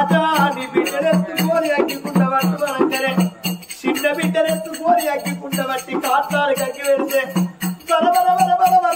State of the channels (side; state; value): both; identical; correlation 1.00